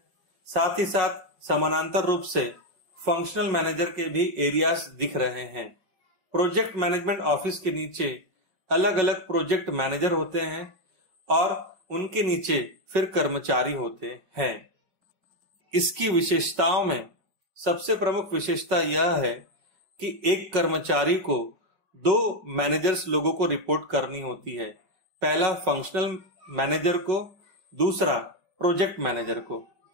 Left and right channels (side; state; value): left; late; 5.4 ms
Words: साथ ही साथ समानांतर रूप से फंक्शनल मैनेजर के भी एरियाज दिख रहे हैं। प्रोजेक्ट मैनेजमेंट ऑफिस के नीचे अलग अलग प्रोजेक्ट मैनेजर होते हैं और उनके नीचे फिर कर्मचारी होते हैं। इसकी विशेषताओं में सबसे प्रमुख विशेषता यह है कि एक कर्मचारी को दो मैनेजर्स लोगों को रिपोर्ट करनी होती है। पहला फंक्शनल मैनेजर को, दूसरा प्रोजेक्ट मैनेजर को।